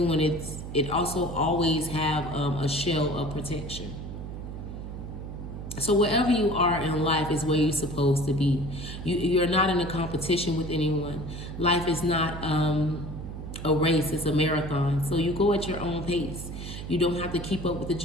when it also always have a shell of protection. So wherever you are in life is where you're supposed to be. You're not in a competition with anyone. Life is not a race, it's a marathon. So you go at your own pace. You don't have to keep up with the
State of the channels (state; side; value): noise; right; hum, 9 dB below the sound